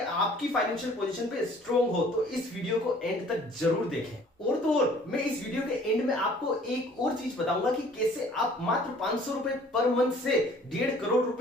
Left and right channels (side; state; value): both; normal; correlation 0.53